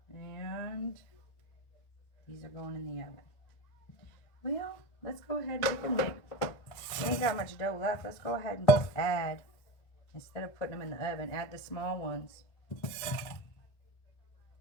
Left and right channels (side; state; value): right; late; 1.9 ms